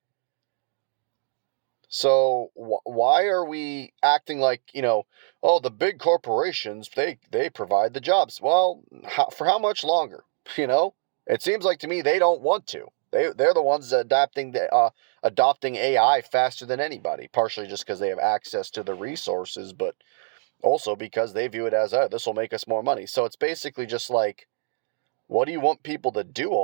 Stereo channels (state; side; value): silent; left; digital silence